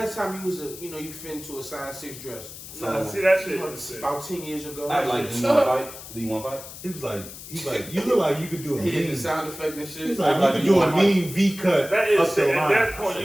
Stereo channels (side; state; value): left; noise; hiss, 14 dB below the sound